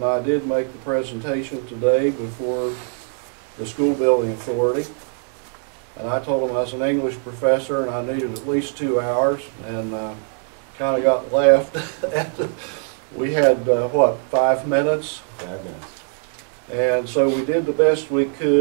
I did make the presentation today before the School Building Authority. And I told them I was an English professor and I needed at least 2 hours, and kind of got left. We had, 5 minutes? 5 minutes. And so we did the best we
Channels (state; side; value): silent; left; 55 dB below the other